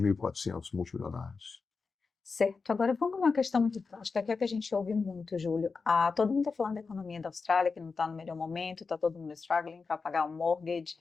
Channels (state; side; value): quieter; right; 4.6 dB